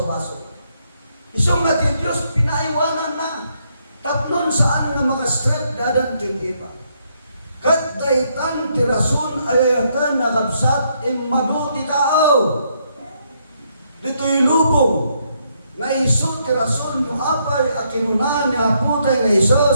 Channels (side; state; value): both; inverted; correlation -0.74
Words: Isong nga ti Diyos pinaiwanan na, tapnon saan nga makastret dadan kin iba. Kat daitan ti rason ayatan nakabsat imado ti tao. Dito'y lubong, nga iso ti rason yung apay a kinunan ni aputay nga